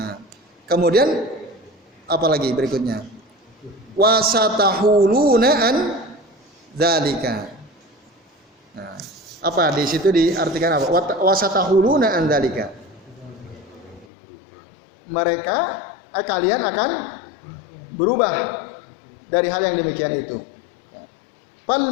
kemudian apalagi berikutnya? Wasatahuluna an dzalika. Nah, apa di situ diartikan apa? Wasatahuluna an dzalika. Mereka kalian akan berubah dari hal yang demikian itu. Fal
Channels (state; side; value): drops out; right; at 14.1 s